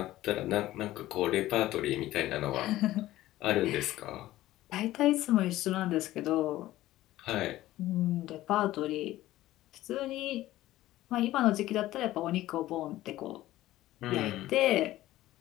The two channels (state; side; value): quieter; right; 15.5 dB